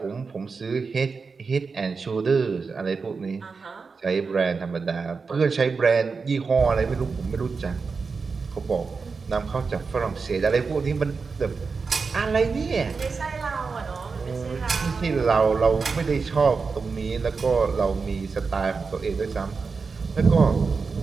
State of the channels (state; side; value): quieter; left; 4.8 dB